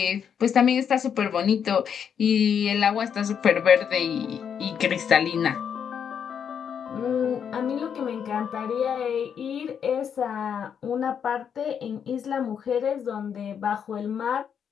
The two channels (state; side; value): quieter; right; 7.8 dB